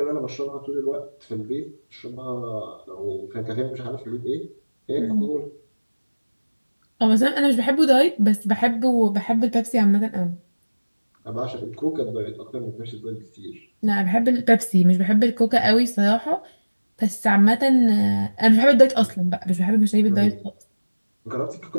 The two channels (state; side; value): inverted; both; correlation -1.00